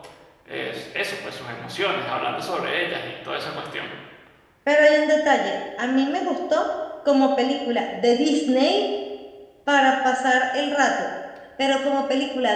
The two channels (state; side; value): identical; both; correlation 1.00